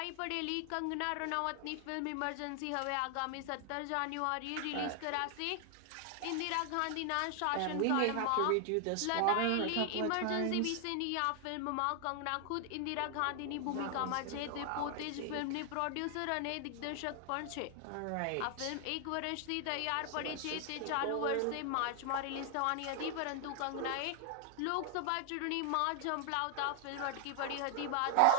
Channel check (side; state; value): both; different; correlation 0.00